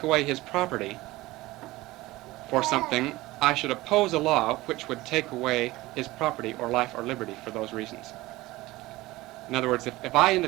away his property for something, I should oppose a law which would take away his property or life or liberty for those reasons. In other words, if I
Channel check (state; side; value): quieter; left; 18.9 dB